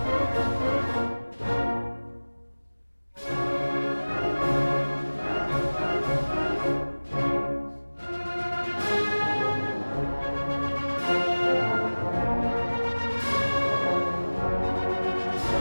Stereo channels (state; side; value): inverted; both; correlation -1.00